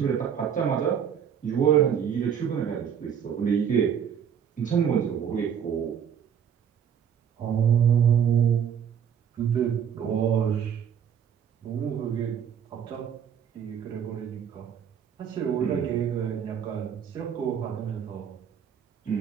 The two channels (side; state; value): left; quieter; 8.2 dB